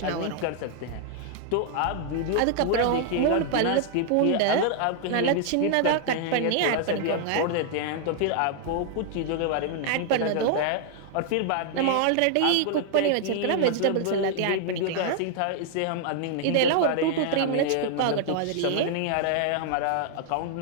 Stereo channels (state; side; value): different; both; correlation 0.00